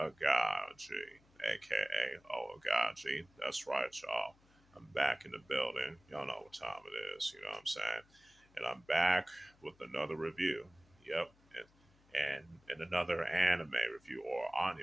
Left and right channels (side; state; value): left; noise; hum, 30 dB below the sound